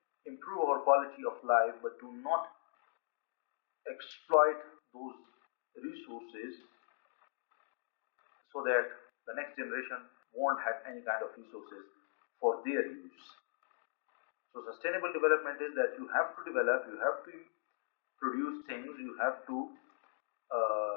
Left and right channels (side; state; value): right; silent; digital silence